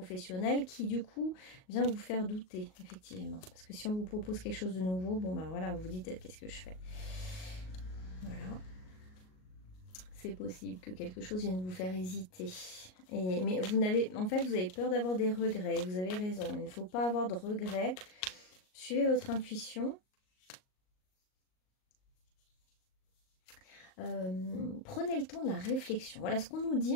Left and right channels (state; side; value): late; right; 38 ms